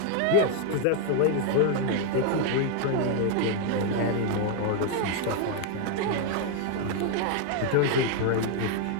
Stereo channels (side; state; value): both; different; correlation 0.00